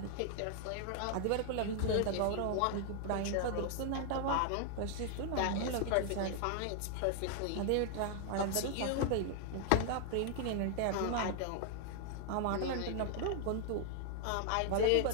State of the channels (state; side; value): different; both; correlation 0.00